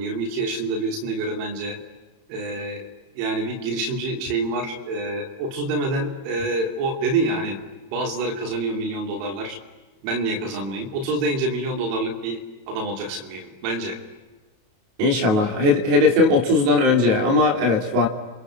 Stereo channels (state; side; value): late; left; 31 ms